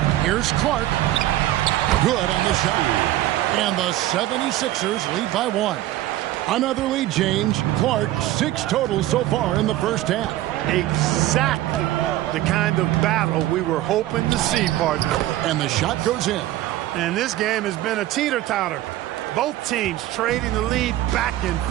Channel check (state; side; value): quieter; left; 14.8 dB